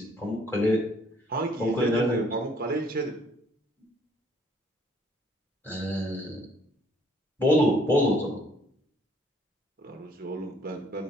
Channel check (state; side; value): normal; both; correlation 0.63